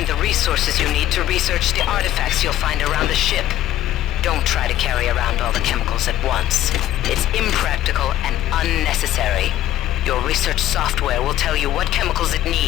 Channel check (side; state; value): right; quieter; 13.1 dB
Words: Resources you need to research the artifacts you'll find around the ship. Don't try to carry around all the chemicals at once. It's impractical and unnecessary. Your research software will tell you what chemicals it